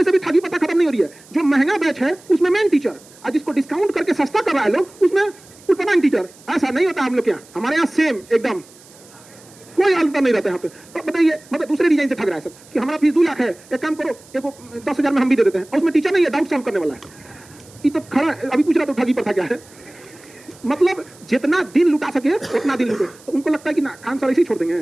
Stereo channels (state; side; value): noise; right; hiss, 24 dB below the sound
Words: से भी ठगी पता खत्म नहीं हो रही है। जो महंगा बैच है उसमें मेन टीचर, और जिसको डिस्काउंट करके सस्ता कर रहा है लोग, उसमें उतना टीचर। ऐसा नहीं होता हम लोग के यहाँ, हमारे यहाँ सेम एकदम कोई अंतर नहीं रहता यहाँ पे। तो बताइए, मतलब दूसरे डिजाइन से ठग रहा है सब कि हमारा फीस 2 लाख है, एक काम करो, एक 10,000 में हम भी दे देते हैं, और उसमें टीचर नहीं है, डाउट सॉल्व करने वाला है। ये तो खड़ा अभी पूछ रहा तो ठगी पर था क्या है, मतलब जितना दिन लुटा सके उतना दिन लुटे। तो उनको लगता है कि ना खान सर ऐसे ही छोड़